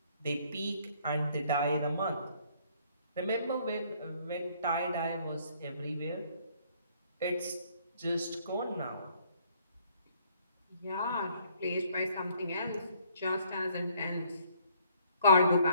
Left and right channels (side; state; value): both; inverted; correlation -0.64